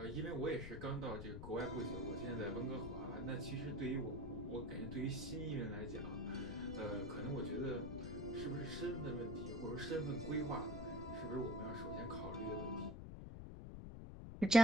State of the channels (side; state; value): left; noise; rumble, 7 dB below the sound